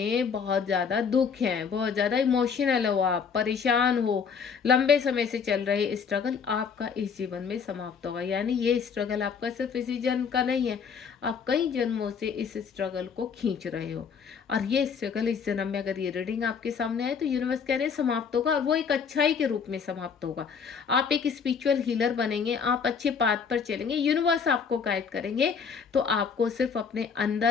बहुत ज़्यादा दुख हैं, बहुत ज़्यादा इमोशनल हो, आप परेशान हो, लंबे समय से चल रहे स्ट्रगल आपका इस जीवन में समाप्त होगा। यानी ये स्ट्रगल आपका सिर्फ इसी जन्म का नहीं है, आप कई जन्मों से इस स्ट्रगल को खींच रहे हो और ये स्ट्रगल इस जन्म में अगर ये रीडिंग आपके सामने है तो यूनिवर्स कह रहे हैं समाप्त होगा, और वो एक अच्छाई के रूप में समाप्त होगा। आप एक स्पिरिचुअल हीलर बनेंगे, आप अच्छे पाथ पर चलेंगे, यूनिवर्स आपको गाइड करेंगे। तो आपको सिर्फ अपने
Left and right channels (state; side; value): quieter; right; 6.3 dB